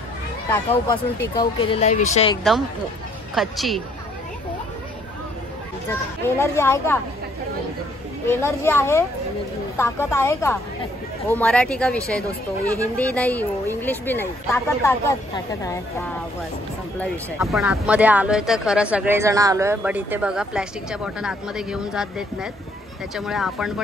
टाकाऊ पासून टिकाऊ केलेला आहे विषय, एकदम खच्ची। एनर्जी आहे का? एनर्जी आहे, ताकद आहे का? वो मराठी का विषय दोस्तों, ये हिंदी नहीं, वो इंग्लिश भी नहीं। ताकद आहे, हा बस संपला विषय। आपण आतमध्ये आलोय तर खरं सगळेजण आलोय, बट इथे बघा प्लॅस्टिकच्या बॉटल आतमध्ये घेऊन जात देत नाहीत, त्याच्यामुळे आपण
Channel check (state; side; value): normal; both; correlation 0.65